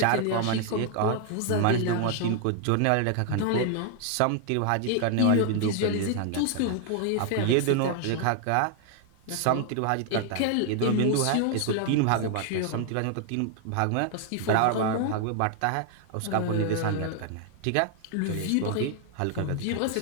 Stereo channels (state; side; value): different; both; correlation 0.00